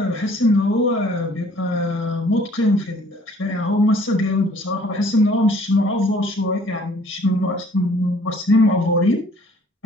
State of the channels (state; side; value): normal; both; correlation 0.56